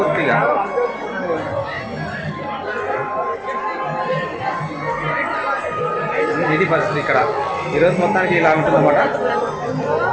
ఇది పరిస్థితి ఇక్కడ ఈరోజు మొత్తానికి ఇలా ఉంటుందన్నమాట.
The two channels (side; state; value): both; identical; correlation 1.00